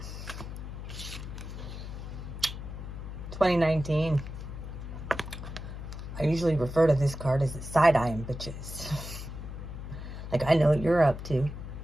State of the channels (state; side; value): noise; left; hum, 9 dB below the sound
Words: 2019. I usually refer to this card as the side-eyeing bitches. Like, I know what you're up to.